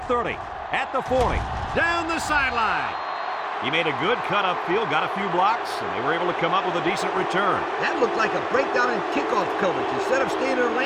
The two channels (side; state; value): both; identical; correlation 1.00